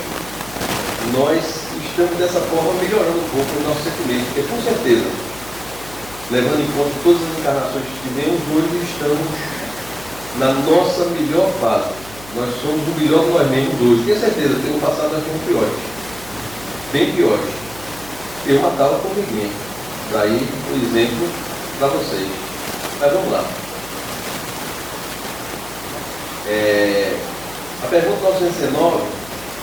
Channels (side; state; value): left; noise; hum, 19 dB below the sound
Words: Nós estamos dessa forma melhorando um pouco o nosso sentimento, porque com certeza, levando em conta todas as encarnações que tivemos, hoje estamos na nossa melhor fase. Nós somos o melhor de nós mesmos hoje. Tenho certeza, no passado nós fomos piores. Bem piores. Eu matava a formiguinha. Daí, um exemplo para vocês. Mas vamos lá. A pergunta 919